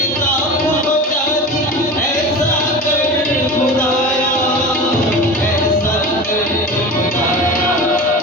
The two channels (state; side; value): normal; both; correlation 0.31